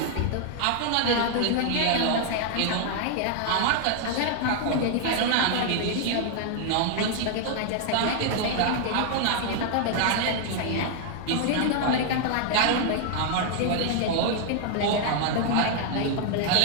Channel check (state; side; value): different; both; correlation 0.00